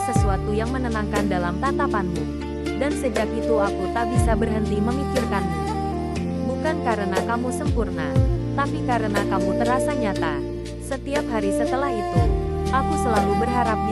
sesuatu yang menenangkan dalam tatapanmu. Dan sejak itu aku tak bisa berhenti memikirkanmu. Bukan karena kamu sempurna, tapi karena kamu terasa nyata. Setiap hari setelah itu, aku selalu berharap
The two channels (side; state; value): both; identical; correlation 1.00